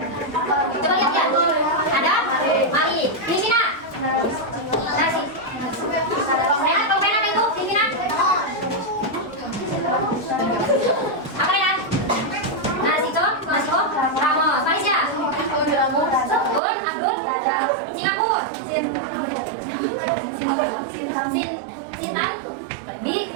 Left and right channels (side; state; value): left; drops out; at 16.6 s